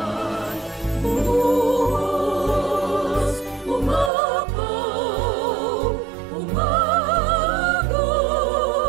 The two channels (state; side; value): drops out; left; at 4.1 s